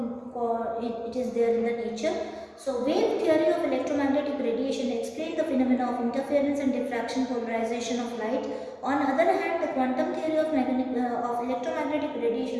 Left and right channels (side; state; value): both; identical; correlation 1.00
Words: it is there in the nature. So, wave theory of electromagnetic radiation explains the phenomena of interference and diffraction polarization of light. On the other hand, the quantum theory of electromagnetic